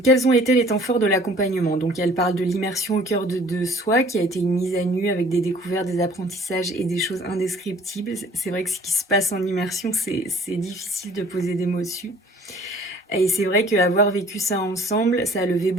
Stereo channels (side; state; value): both; normal; correlation 0.53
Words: ont été les temps forts de l'accompagnement? Donc elle parle de l'immersion au cœur de soi, qui a été une mise à nu avec des découvertes, des apprentissages et des choses indescriptibles. C'est vrai que ce qui se passe en immersion, c'est difficile de poser des mots dessus. Et c'est vrai qu'avoir vécu ça ensemble, ça a levé